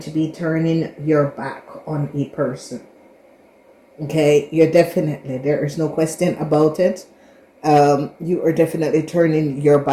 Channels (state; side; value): identical; both; correlation 1.00